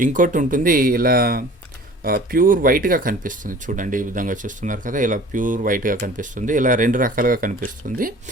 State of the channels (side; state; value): both; normal; correlation 0.45